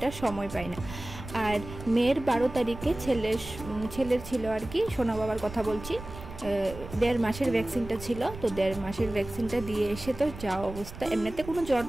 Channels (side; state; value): right; noise; rumble, 13 dB below the sound